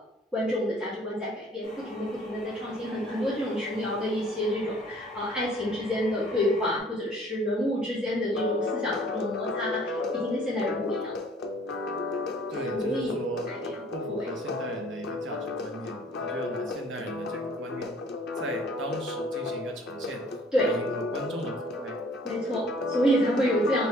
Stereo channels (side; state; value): both; normal; correlation 0.55